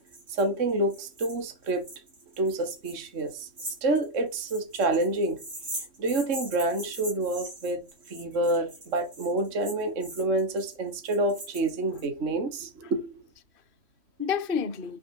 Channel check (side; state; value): left; late; 3.1 ms